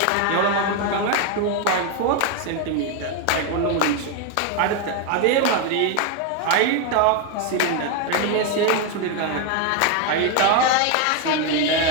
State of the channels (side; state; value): both; different; correlation 0.01